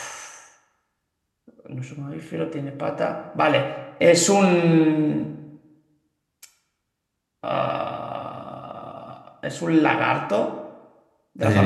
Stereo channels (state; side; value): identical; both; correlation 1.00